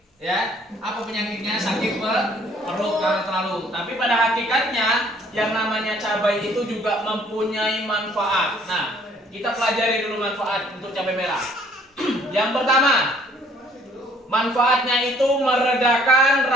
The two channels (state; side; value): normal; both; correlation 0.60